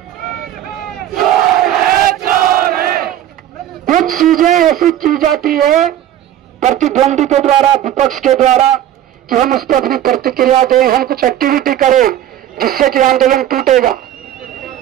कुछ चीजें ऐसी की जाती है प्रतिद्वंदी के द्वारा, विपक्ष के द्वारा, कि हम उस पर अपनी प्रतिक्रिया दें, हम कुछ एक्टिविटी करें जिससे कि आंदोलन टूटेगा।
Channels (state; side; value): quieter; left; 11.7 dB